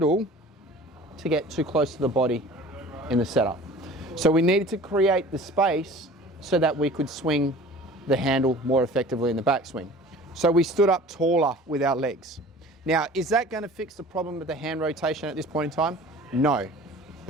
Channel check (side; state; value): both; normal; correlation 0.44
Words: to get too close to the body in the setup. So we needed to create the space so that we could swing the handle more effectively in the backswing. So we stood up taller with our legs. Now, is that going to fix the problem with the hand rotation at this point in time? No,